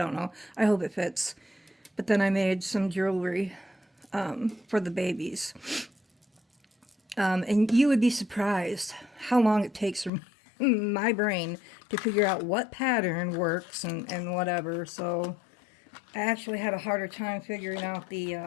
know. I hope it fits. But then I made some jewelry for the babies. And you would be surprised how long it takes for my brain to figure out what pattern works and whatever. So I actually had a harder time figuring out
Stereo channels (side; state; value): right; drops out; at 10.1 s